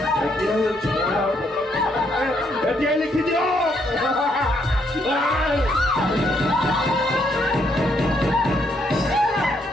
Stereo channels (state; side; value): normal; both; correlation 0.73